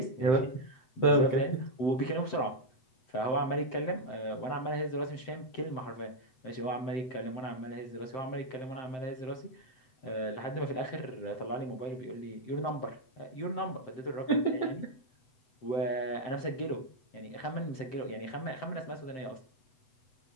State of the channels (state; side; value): late; right; 7.7 ms